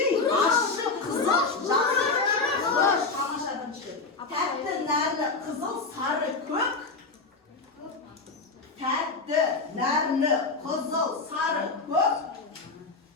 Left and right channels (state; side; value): quieter; right; 3.9 dB